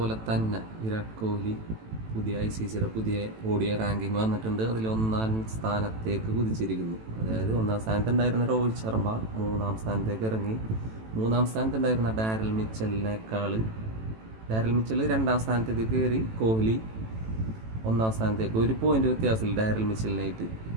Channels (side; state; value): left; late; 18 ms